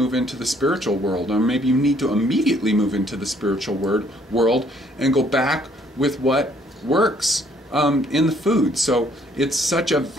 into the spiritual world, or maybe you need to immediately move into the spiritual world and go back with what works in the food. So it's such a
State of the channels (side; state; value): both; normal; correlation 0.64